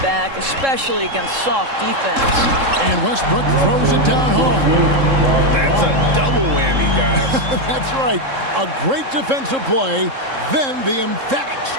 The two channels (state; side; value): late; left; 3.7 ms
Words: back, especially against soft defense. And Westbrook throws it down hard. That's a double whammy, guys. That's right. A great defensive play, then the emphatic